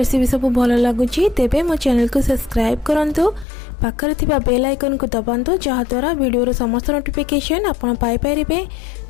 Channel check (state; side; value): drops out; right; at 3.5 s